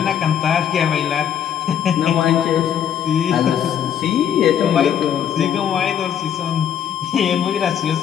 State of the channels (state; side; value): quieter; right; 9.0 dB